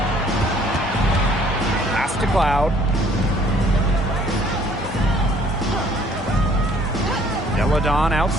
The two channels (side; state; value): both; normal; correlation 0.59